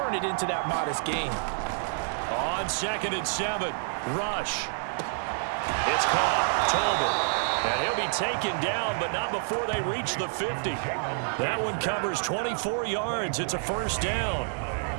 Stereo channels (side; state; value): left; silent; digital silence